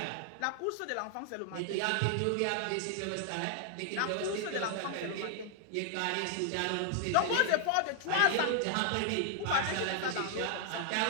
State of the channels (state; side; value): different; both; correlation 0.00